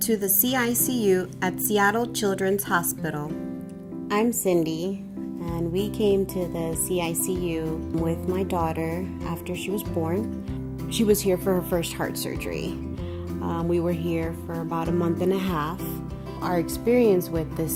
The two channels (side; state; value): both; identical; correlation 1.00